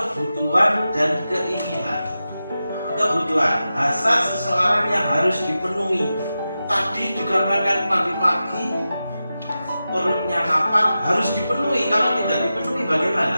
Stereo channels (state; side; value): inverted; both; correlation -0.92